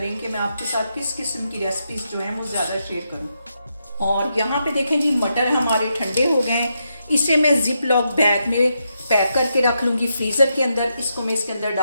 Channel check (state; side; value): inverted; both; correlation -0.83